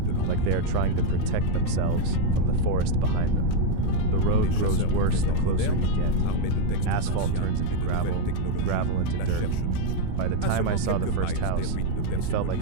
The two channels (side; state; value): both; different; correlation 0.01